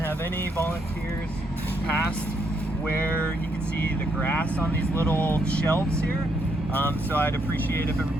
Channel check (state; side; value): normal; both; correlation 0.75